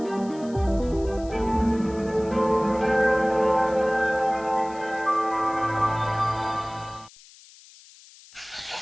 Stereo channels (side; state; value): left; noise; hiss, 23 dB below the sound